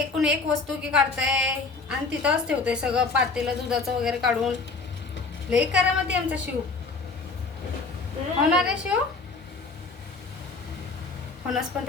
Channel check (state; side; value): quieter; right; 4.0 dB